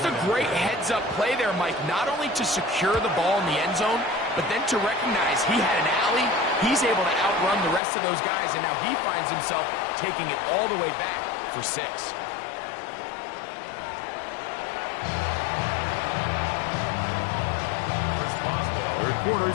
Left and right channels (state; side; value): drops out; right; at 7.8 s